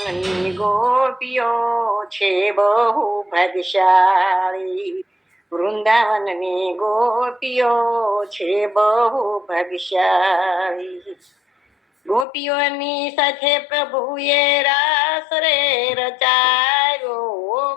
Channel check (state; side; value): drops out; right; at 12.2 s